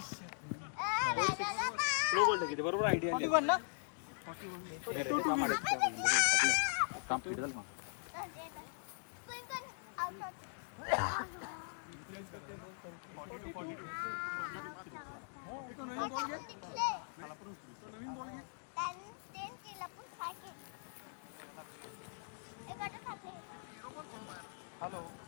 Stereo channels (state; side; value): silent; right; digital silence